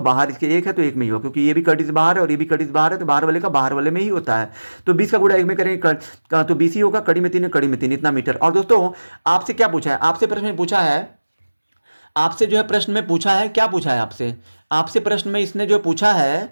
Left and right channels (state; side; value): inverted; both; correlation -1.00